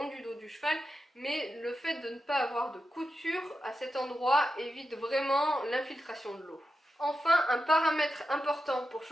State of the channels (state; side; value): normal; both; correlation 0.90